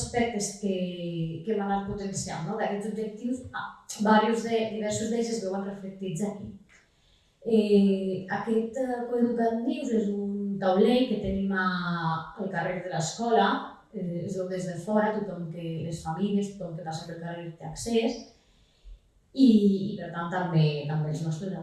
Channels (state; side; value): identical; both; correlation 1.00